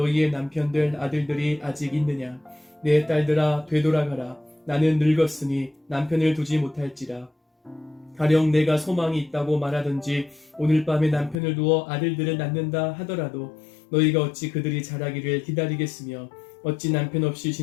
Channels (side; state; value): right; drops out; at 11.4 s